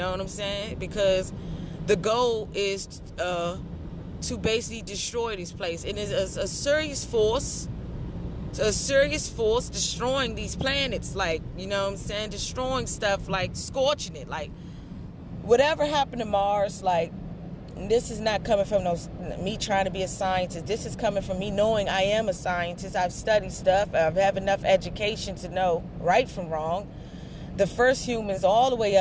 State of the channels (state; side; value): identical; both; correlation 1.00